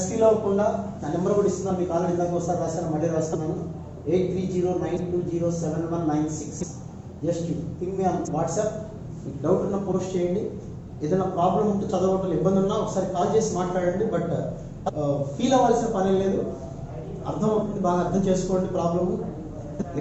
ఫీల్ అవ్వకుండా నా నెంబర్ కూడా ఇస్తున్నాను. మీకు ఆల్రెడీ ఇందాక ఒకసారి రాశాను, మళ్ళీ రాస్తున్నాను. 8309207196. Just ping me on WhatsApp. మీకు డౌట్ ఉన్నా పోస్ట్ చేయండి. ఏదైనా ప్రాబ్లం ఉంటే చదవటం ఇబ్బంది ఉన్నా ఒకసారి కాల్ చేసి మాట్లాడండి. బట్ ఫీల్ అవ్వాల్సిన పని లేదు, అర్థం అవుతుంది, బాగా అర్థం చేసుకోండి. ప్రాబ్లము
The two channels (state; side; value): identical; both; correlation 1.00